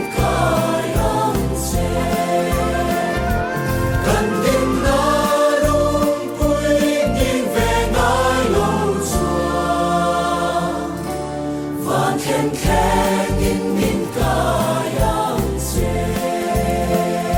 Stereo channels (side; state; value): both; identical; correlation 1.00